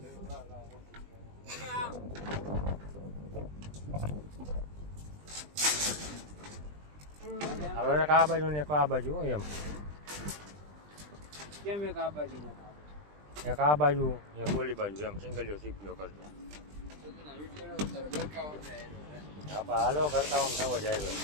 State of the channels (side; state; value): left; late; 20 ms